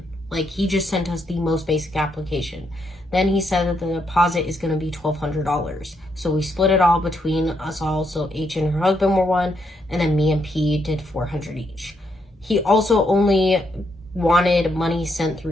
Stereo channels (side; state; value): both; normal; correlation 0.77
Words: Like, he just sent us the most basic application. Then he said that the deposit is going to be $1,200. So we split it all between us all. So H and her husband were one, and then me and P did $400 each. He also only wanted money sent